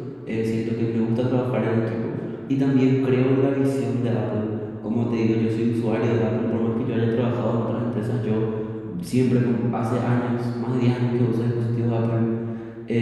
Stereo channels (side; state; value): both; identical; correlation 1.00